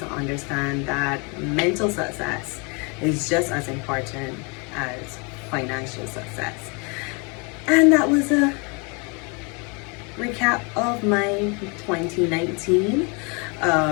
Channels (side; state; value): right; quieter; 32.3 dB